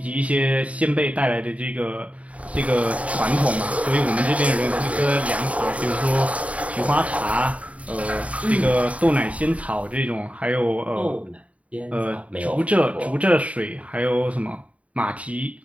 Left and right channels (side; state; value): left; late; 0.067 ms